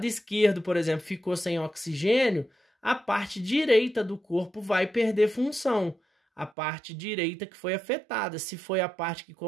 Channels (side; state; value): left; drops out; at 6.5 s